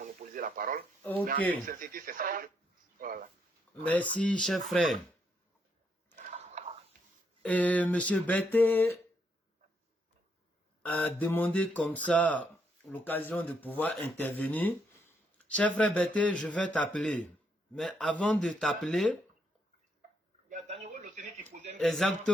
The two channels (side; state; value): both; normal; correlation 0.75